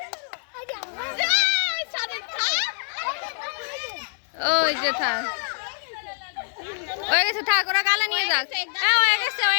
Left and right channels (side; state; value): right; silent; digital silence